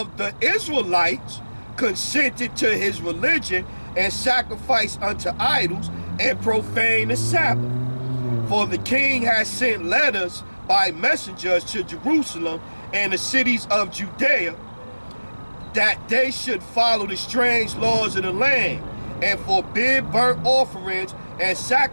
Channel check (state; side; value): inverted; both; correlation -1.00